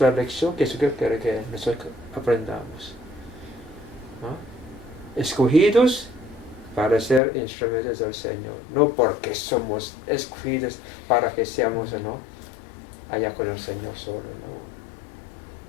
la lección que Jesús quiere que nosotros aprendamos, ¿no? Escogidos para ser instrumentos del Señor, no porque somos escogidos para que seamos, ¿no?, allá con el Señor solo, ¿no?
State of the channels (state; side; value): drops out; right; at 7.2 s